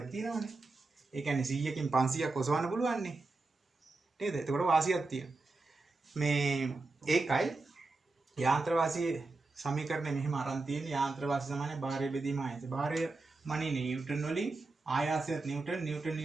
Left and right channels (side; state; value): left; quieter; 3.5 dB